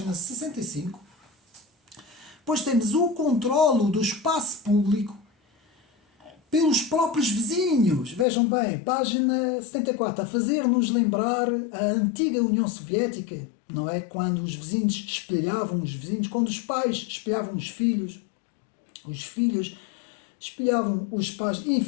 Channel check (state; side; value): drops out; right; at 8.2 s